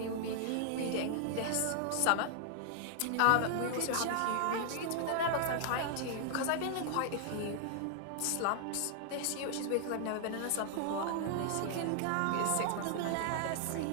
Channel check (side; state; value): both; different; correlation 0.00